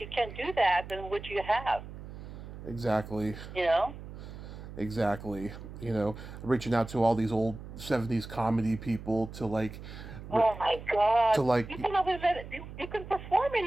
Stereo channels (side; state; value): right; noise; hum, 12 dB below the sound